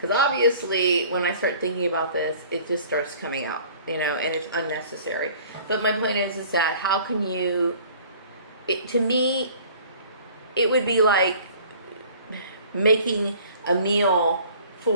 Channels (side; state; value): both; inverted; correlation -0.50